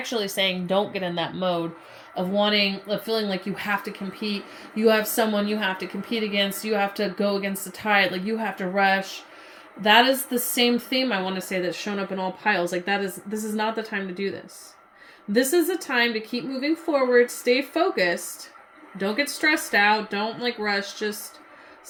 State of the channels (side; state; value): both; identical; correlation 1.00